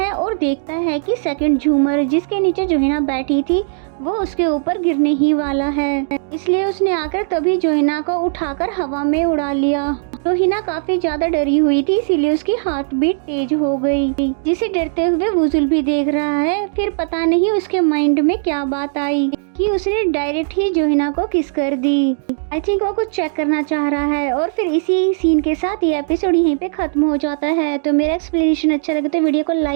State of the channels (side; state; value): left; silent; digital silence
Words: और देखता है कि सेकंड झूमर, जिसके नीचे जोहिना बैठी थी, वो उसके ऊपर गिरने ही वाला है। इसलिए उसने आकर तभी जोहिना को उठाकर हवा में उड़ा लिया। जोहिना काफी ज्यादा डरी हुई थी, इसीलिए उसकी हार्ट बीट तेज हो गई, जिसे डरते हुए वुजुल भी देख रहा है। फिर पता नहीं उसके माइंड में क्या बात आई कि उसने डायरेक्ट ही जोहिना को किस कर दी। आई थिंक वो कुछ चेक करना चाह रहा है। और फिर इसी सीन के साथ ये एपिसोड यहीं पे खत्म हो जाता है। तो मेरा एक्सप्लेनेशन अच्छा लगे तो वीडियो को